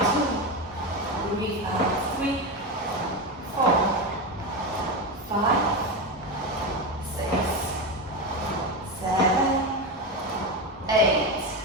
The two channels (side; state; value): both; normal; correlation 0.16